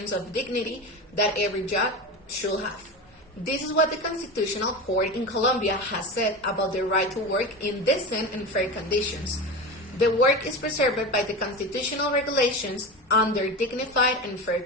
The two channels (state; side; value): normal; both; correlation 0.25